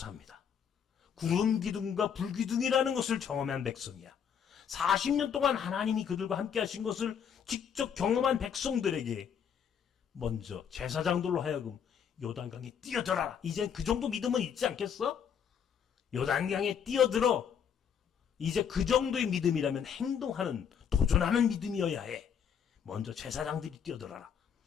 구름 기둥과 불 기둥이라는 것을 경험한 백성이야. 40년 동안 하나님이 그들과 함께 하신 것을 직접 경험한 백성들에게 먼저 제사장들로 하여금 요단강에 뛰어들어라. 이제 그 정도 믿음은 있지 않겠어? 요단강에 뛰어들어. 이제 그 정도의 믿음이라면 행동하는, 도전하는 믿음이어야 해. 먼저 제사장들이 뛰어들어라.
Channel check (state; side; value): quieter; right; 7.7 dB